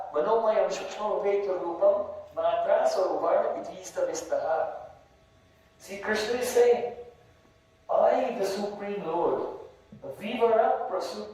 manomayam shukshma veta rupam matra saruvarna itista vistaha. See, Krishna is saying, I, the Supreme Lord, vivara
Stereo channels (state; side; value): identical; both; correlation 1.00